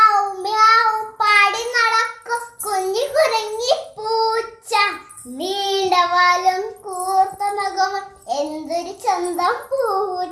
മ്യാവ് പാടി നടക്കും കുഞ്ഞി കുരങ്ങി പൂച്ച. നീണ്ട വാലും കൂർത്ത നഖവും എന്തൊരു ചന്തം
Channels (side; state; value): both; identical; correlation 1.00